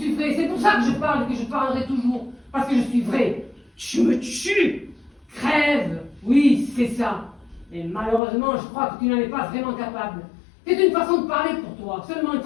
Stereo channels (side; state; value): right; drops out; at 8.2 s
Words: vrai. C'est pour ça que je parle et que je parlerai toujours. Parce que je suis vrai. Tu me tues! Crève. Oui, c'est ça. Et malheureusement, je crois que tu n'en es pas vraiment capable. C'est une façon de parler pour toi, seulement une